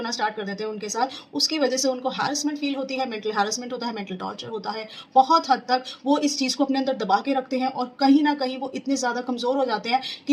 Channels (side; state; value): both; identical; correlation 1.00